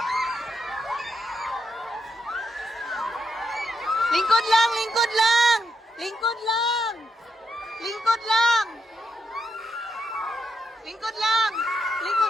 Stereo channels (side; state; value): both; normal; correlation 0.82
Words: Lingkod lang, lingkod lang. Lingkod lang. Lingkod lang. Lingkod lang.